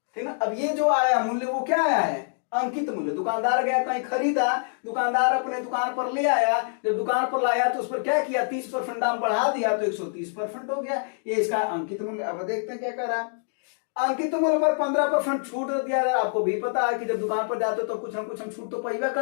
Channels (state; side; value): silent; right; digital silence